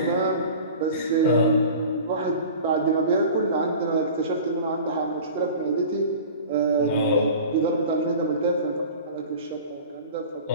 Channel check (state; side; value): inverted; both; correlation -0.39